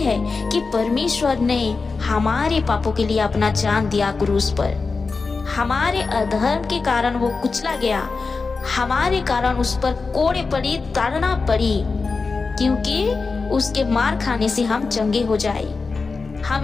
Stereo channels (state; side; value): quieter; right; 4.3 dB